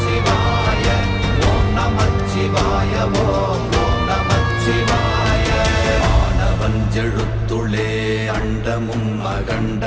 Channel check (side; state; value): both; identical; correlation 1.00